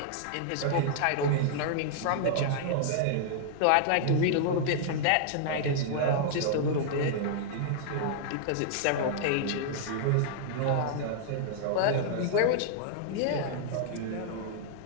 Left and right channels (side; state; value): both; different; correlation -0.01